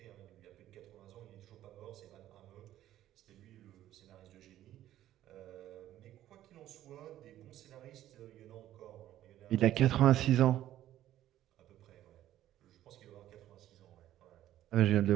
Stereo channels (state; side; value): quieter; left; 13.0 dB